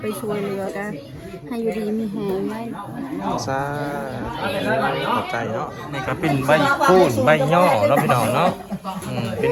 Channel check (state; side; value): identical; both; correlation 1.00